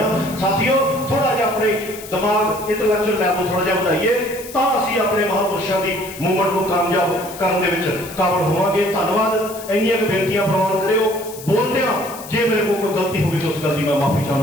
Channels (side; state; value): left; noise; hiss, 15 dB below the sound